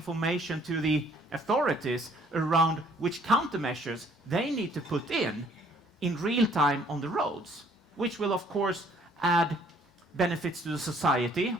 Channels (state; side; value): normal; both; correlation 0.61